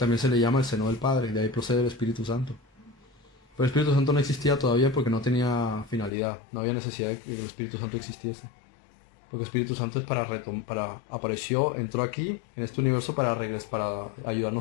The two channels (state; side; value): drops out; right; at 6.1 s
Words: se le llama el seno del Padre, de ahí procede el Espíritu Santo. Pero el Espíritu Santo no existía todavía porque no tenía finalidad, no había necesidad de que el Espíritu Santo existiese. Porque el Espíritu Santo es apareció, entró aquí, en este universo, para